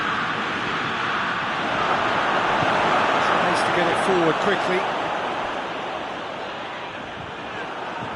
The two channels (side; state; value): both; identical; correlation 1.00